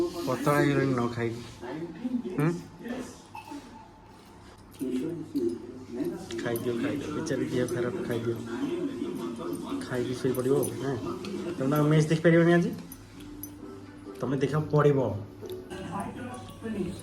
ପତଳା ହେଇଗଲିଣି ନ ଖାଇକି ଖାଇଦିଅ ବିଚାରି ଦେହ ଖରାପ ଖାଇଦିଅ ଖାଇକି ଶୋଇପଡ଼ିବ ହଁ ତମେ ମ୍ୟାଚ୍ ଦେଖିପାରିବନି ଆଜି ତମେ ଦେଖିବାକୁ ପଡ଼ିବ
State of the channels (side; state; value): both; identical; correlation 1.00